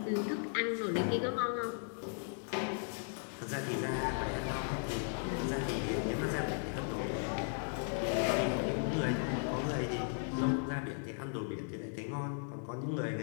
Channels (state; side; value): silent; right; 53 dB below the other